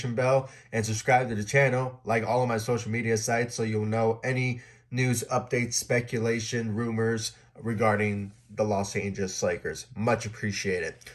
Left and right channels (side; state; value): both; identical; correlation 1.00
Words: bell and subscribe to the channel, like all of my social media sites, so you'll know any news, updates, speculation, rumors regarding the Los Angeles Lakers. Much appreciated.